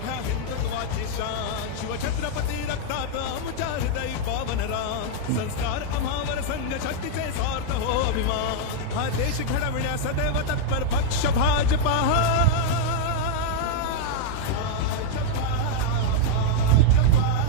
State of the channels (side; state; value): both; different; correlation -0.01